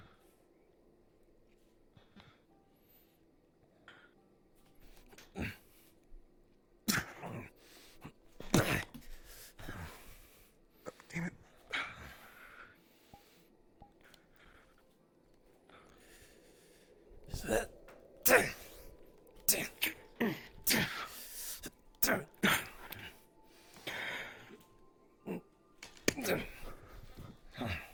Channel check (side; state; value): both; identical; correlation 1.00